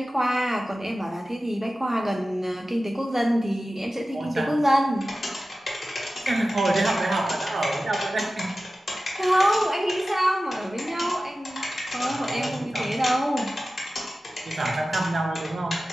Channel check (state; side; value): normal; both; correlation 0.95